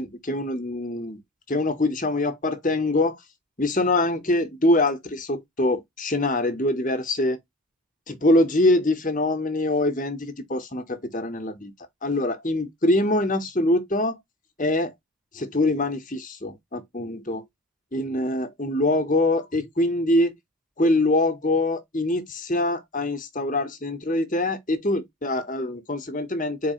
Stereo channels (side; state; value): both; normal; correlation 0.37